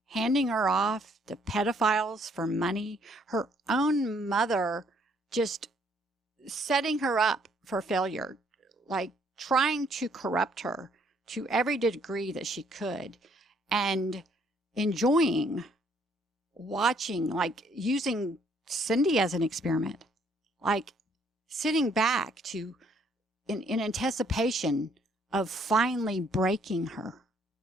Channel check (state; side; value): normal; both; correlation 0.66